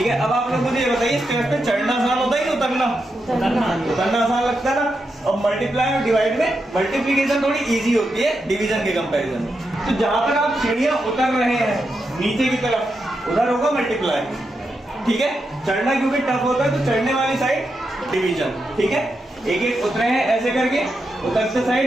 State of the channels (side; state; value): both; normal; correlation 0.86